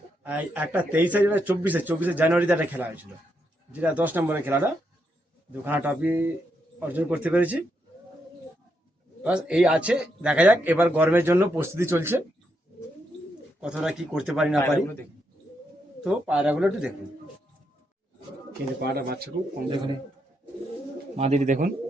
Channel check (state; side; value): normal; both; correlation 0.80